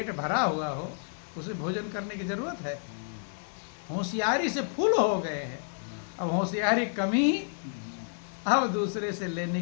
भरा हुआ हो उसे भोजन करने की जरूरत है? होशियारी से फुल हो गए हैं, अब होशियारी कमी, अब दूसरे से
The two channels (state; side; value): silent; right; 58 dB below the other